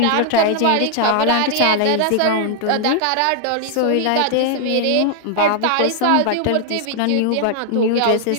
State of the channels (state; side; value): different; both; correlation 0.00